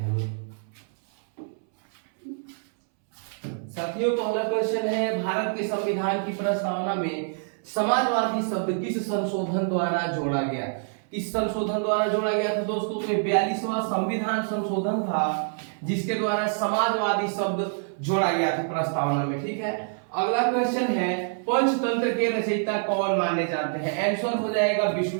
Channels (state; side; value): silent; left; 61 dB below the other